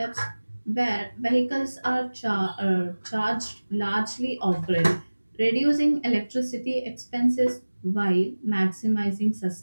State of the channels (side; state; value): both; inverted; correlation -1.00